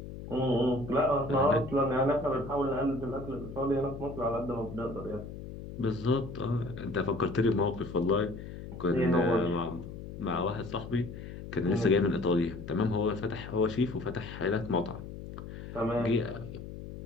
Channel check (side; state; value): left; noise; hum, 11 dB below the sound